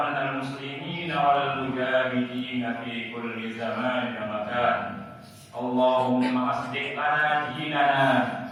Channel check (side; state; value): both; identical; correlation 1.00